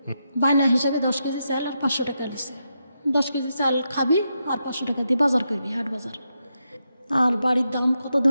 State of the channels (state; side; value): inverted; both; correlation -0.85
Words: বায়না হিসাবে 10 কেজি চাল আর 500 টাকা লিছে। 10 কেজি চাল খাবি আর 500 টাকা দিয়ে বাজার করবি, হাট বাজার। আর বাড়ির দাম কত